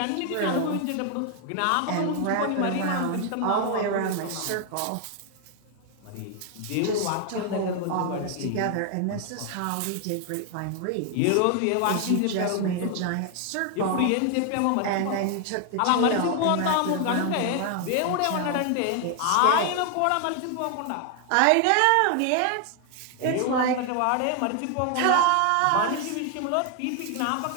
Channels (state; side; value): different; both; correlation 0.00